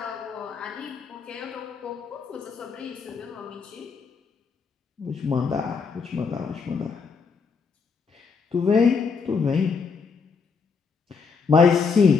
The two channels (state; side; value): quieter; right; 5.3 dB